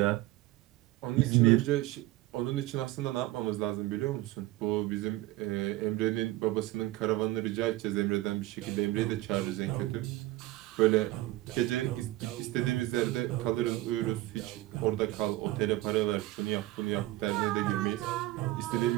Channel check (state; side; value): quieter; left; 17.5 dB